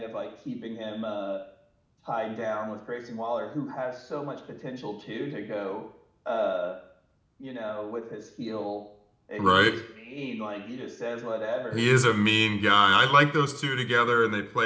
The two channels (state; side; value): identical; both; correlation 1.00